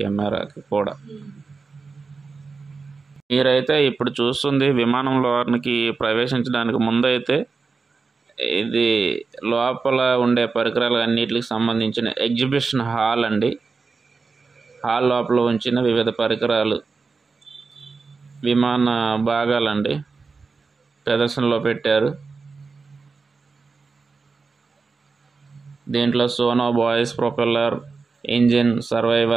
కూడా. మీరైతే ఇప్పుడు చూస్తుంది విమానంలోనికి ప్రవేశించడానికి ముందైతే ఇది లోపల ఉండే పరికరాలు అన్నిటికి సంబంధించిన ఎగ్జిబిషన్ హాల్ అండి. హాల్ లోపల ఉంచిన వివిధ పరికరాలు, విమాన భాగాలండి ప్రదర్శనలో పెట్టారు. దీంట్లో sonobuoys, propeller, engine,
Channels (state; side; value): quieter; left; 4.5 dB